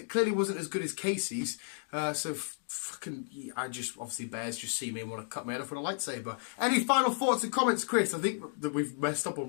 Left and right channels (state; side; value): silent; right; 56 dB below the other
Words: clearly wasn't as good as Casey's. So fucking, I just, obviously bears just see me and want to cut my head off with a lightsaber. Any final thoughts and comments, Chris? I think that we've messed up